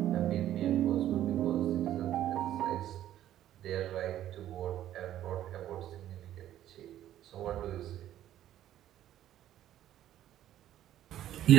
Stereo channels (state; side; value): quieter; left; 12.3 dB